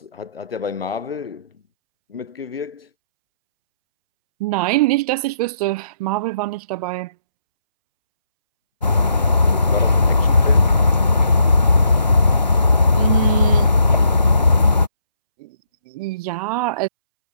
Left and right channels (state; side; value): inverted; both; correlation -0.73